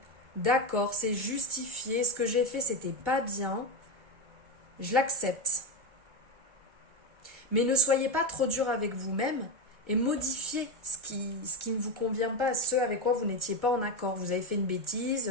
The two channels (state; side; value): late; left; 1.3 ms